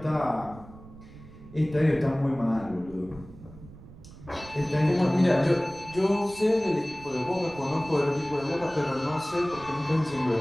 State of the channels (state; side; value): noise; right; rumble, 18 dB below the sound